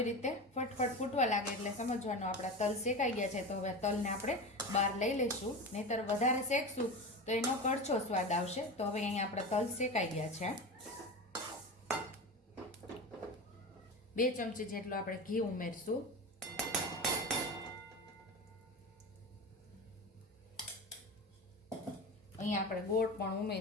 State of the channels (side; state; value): both; normal; correlation 0.26